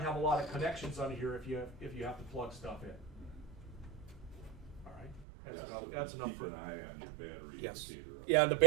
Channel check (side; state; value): left; drops out; at 5.2 s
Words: a lot of connections on here if you have to plug stuff in. All right, that's enough for. Keep an eye on your battery Yes. indicator. Yeah, and the